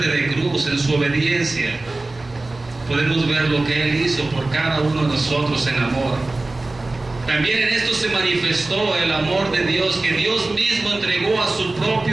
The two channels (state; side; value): quieter; left; 3.1 dB